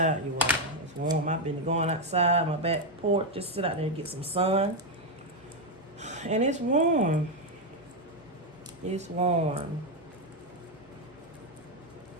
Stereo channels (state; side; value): normal; both; correlation 0.04